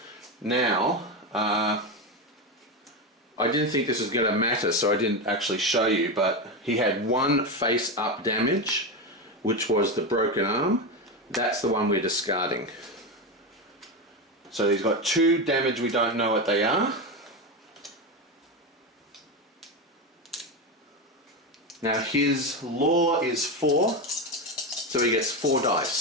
Now, I didn't think this was going to matter, so I didn't actually show you, but he had 1 face up damage, which was the broken arm. That's the one we're discarding. So he's got 2 damage, we don't know what they are. Now his law is 4, so he gets 4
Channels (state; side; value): normal; both; correlation 0.15